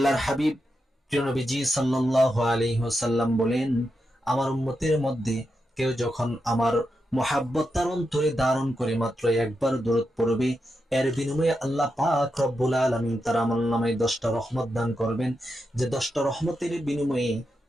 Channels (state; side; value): normal; both; correlation 0.86